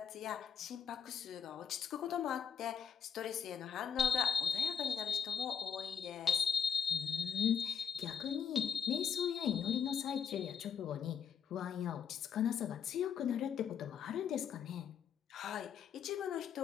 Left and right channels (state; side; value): quieter; right; 7.2 dB